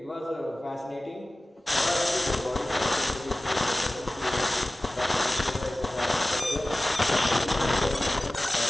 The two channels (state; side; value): normal; both; correlation 0.97